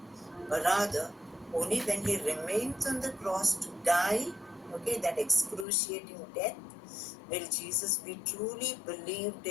But rather, only when he remains on the cross to die, that excruciating death, will Jesus be truly believed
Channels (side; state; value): right; drops out; at 5.7 s